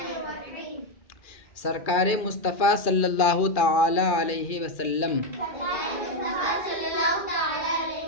سرکار مصطفیٰ صلی اللہ تعالی علیہ وسلم،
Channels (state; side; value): late; right; 2.4 ms